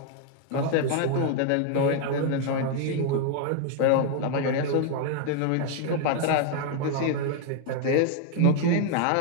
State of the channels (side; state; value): both; different; correlation 0.00